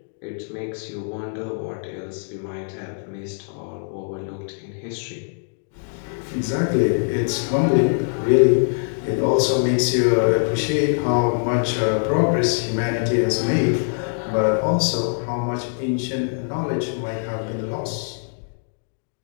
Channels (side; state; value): right; silent; digital silence